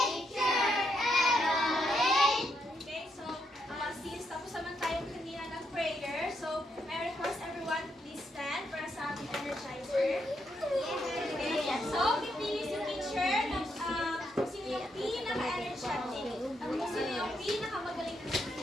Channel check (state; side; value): normal; both; correlation 0.79